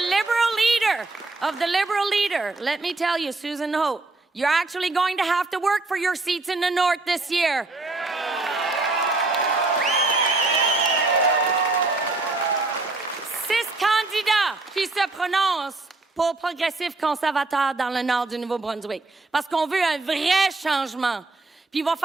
leader of the Liberal leader, let me tell you, Susan Hope, you're actually going to have to work for your seats in the north this year. Six candidats qui se prononcent pour progressif conservateur dans le nord du Nouveau-Brunswick. Parce qu'on veut un vrai changement. Puis il va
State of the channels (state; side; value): quieter; left; 3.3 dB